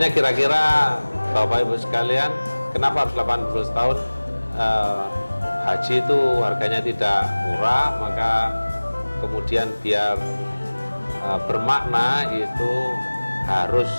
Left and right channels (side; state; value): both; inverted; correlation -1.00